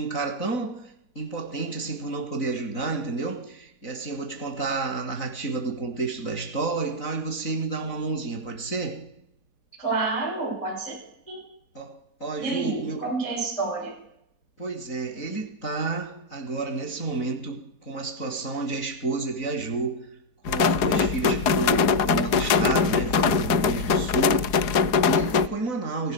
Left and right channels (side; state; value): right; late; 4.7 ms